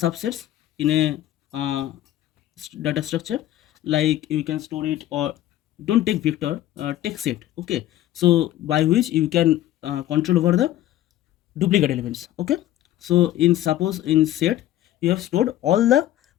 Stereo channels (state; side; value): quieter; right; 13.6 dB